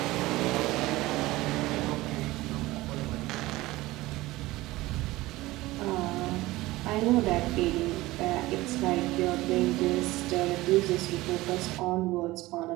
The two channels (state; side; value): quieter; left; 18.8 dB